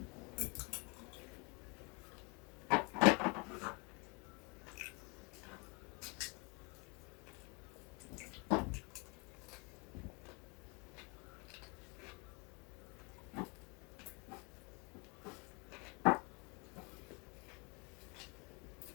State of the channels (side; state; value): right; quieter; 30.9 dB